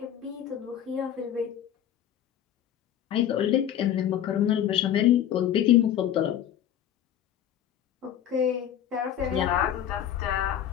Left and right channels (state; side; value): quieter; right; 10.5 dB